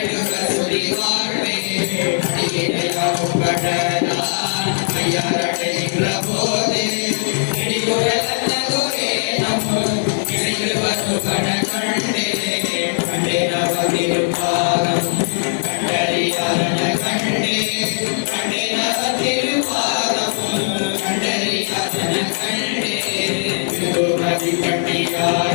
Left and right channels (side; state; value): right; silent; digital silence